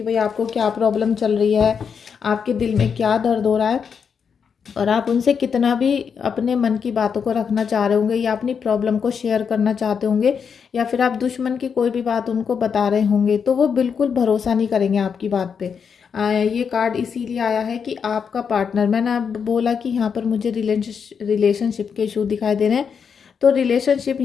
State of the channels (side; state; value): right; quieter; 6.6 dB